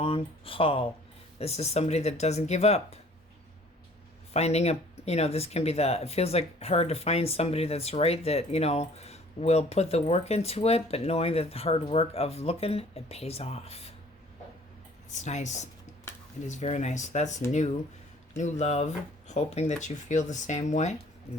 haul. This is somebody that doesn't give up. Finding a, you know, this can be it feels like hard to find somebody that's right, that, you know, will put the work into it, but knowing that the hard work of looking, it pays off. It's nice. It is very nice. That's new love, hoping that you feel the same way.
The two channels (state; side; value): normal; both; correlation 0.53